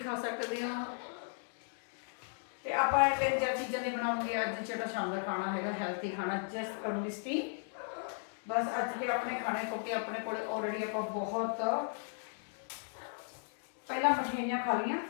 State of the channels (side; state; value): right; silent; 54 dB below the other